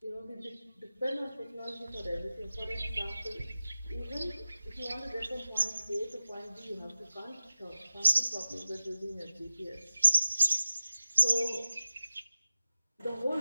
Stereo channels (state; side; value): inverted; both; correlation -0.96